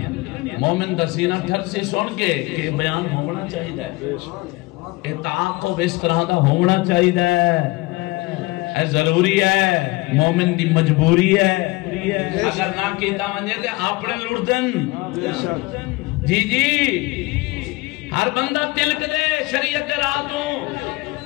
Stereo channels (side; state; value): right; quieter; 22.3 dB